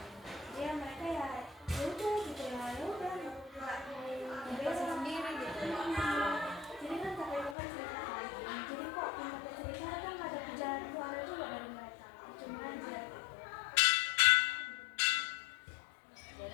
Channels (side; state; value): right; drops out; at 7.6 s